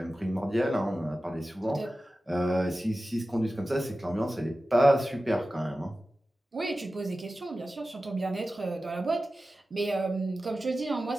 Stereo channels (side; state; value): both; normal; correlation 0.95